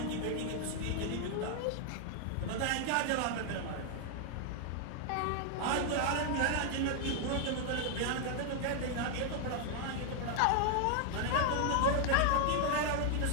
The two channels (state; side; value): different; both; correlation 0.00